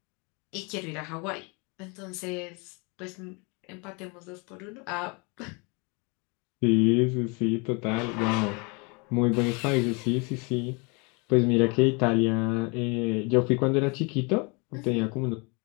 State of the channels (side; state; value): right; quieter; 31.3 dB